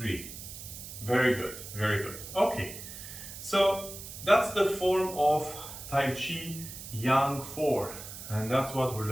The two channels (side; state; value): right; noise; hiss, 11 dB below the sound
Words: Very good, very good. Okay, so that's the form of Tai Chi Yang 4, and that's what we